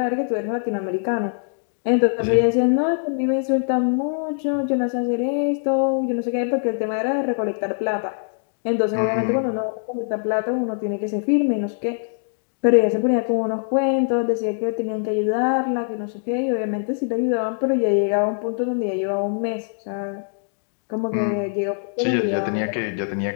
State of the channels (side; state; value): right; silent; digital silence